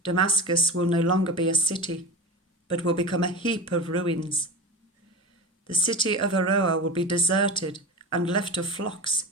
Damascus will no longer be a city, but will become a heap of ruins. The city of Aroer will be deserted and left to flocks,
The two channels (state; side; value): normal; both; correlation 0.27